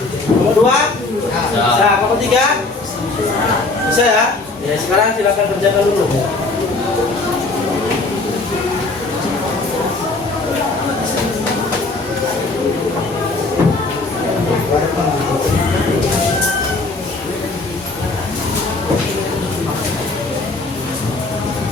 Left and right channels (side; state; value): right; quieter; 3.4 dB